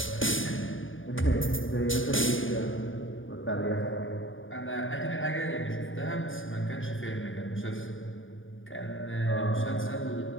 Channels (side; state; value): right; late; 0.58 ms